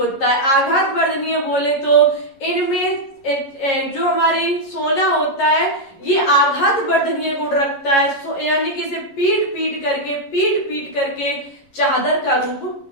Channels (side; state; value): right; late; 11 ms